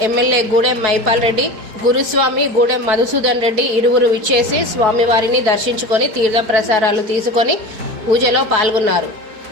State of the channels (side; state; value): left; late; 4.7 ms